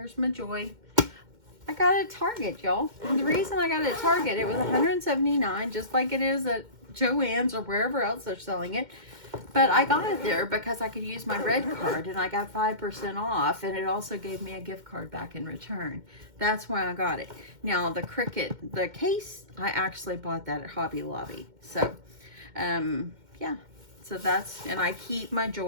my Joy. I got it at Target, y'all. And the reason I got it at Target, it was $179, just like it is at Joann's or wherever else they're selling it. But I got it there because I could use my red card, and I got 5% off, and it also gave me a gift card back in return. That's why I got it. Now the Cricut, the case, I actually bought that at Hobby Lobby. So, yeah. So that's, and I keep my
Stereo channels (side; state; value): left; late; 2.1 ms